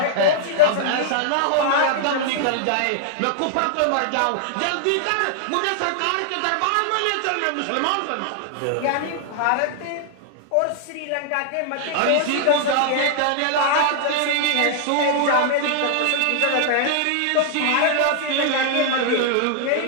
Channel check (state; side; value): different; both; correlation -0.01